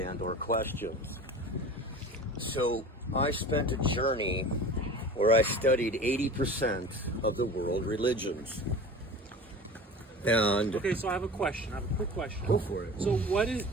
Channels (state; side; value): normal; both; correlation 0.37